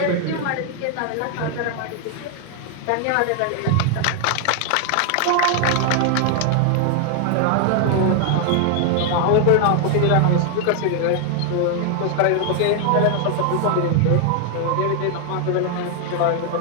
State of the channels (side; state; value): both; different; correlation 0.00